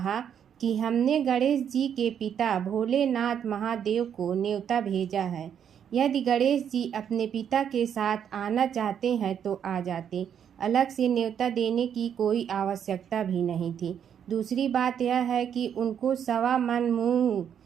कि हमने गणेश जी के पिता भोलेनाथ महादेव को न्योता भेजा है। यदि गणेश जी अपने पिता के साथ आना चाहते हैं तो आ जाते। अलग से न्योता देने की कोई आवश्यकता भी नहीं थी। दूसरी बात यह है कि उनको 1.25 मन मूंग,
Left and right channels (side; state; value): left; quieter; 8.6 dB